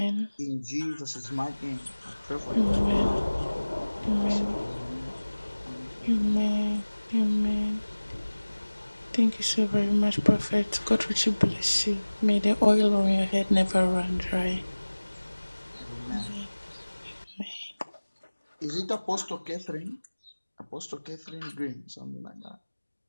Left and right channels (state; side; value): inverted; both; correlation -1.00